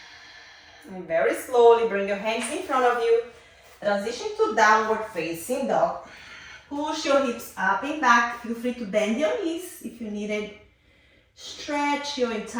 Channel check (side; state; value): both; identical; correlation 1.00